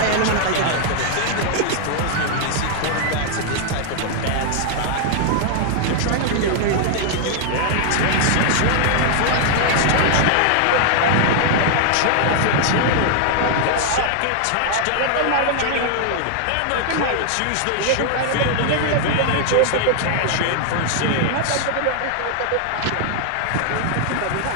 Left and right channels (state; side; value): different; both; correlation 0.00